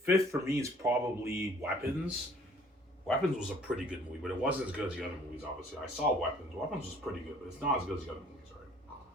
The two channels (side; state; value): both; normal; correlation 0.55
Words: is probably Weapons. Weapons was a pretty good movie, but it wasn't as good as the other movies, obviously. I saw Weapons. Weapons was pretty good, but it's not as good as the other movies,